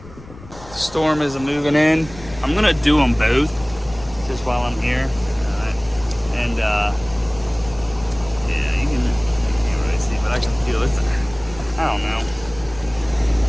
The storm is moving in. I'm gonna do them both just while I'm here. And yeah, you can't really see, but I can feel it. I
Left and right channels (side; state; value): left; noise; rumble, 18 dB below the sound